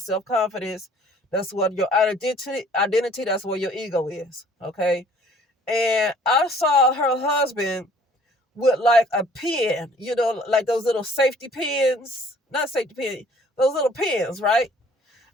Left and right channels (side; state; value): both; normal; correlation 0.56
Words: That's what your identity, that's where your ego is, okay? And I saw her husband with like a pen, like those little safety pins, not safety pin, those little pins, right?